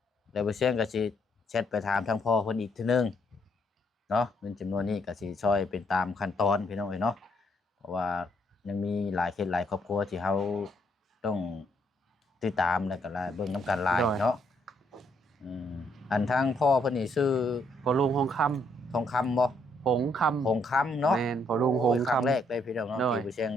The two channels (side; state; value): both; normal; correlation 0.72